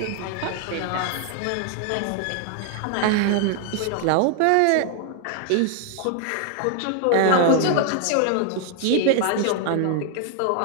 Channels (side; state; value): both; different; correlation 0.00